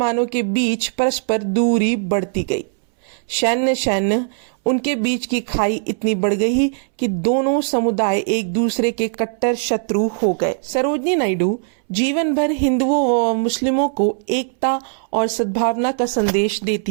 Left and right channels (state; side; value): silent; left; 65 dB below the other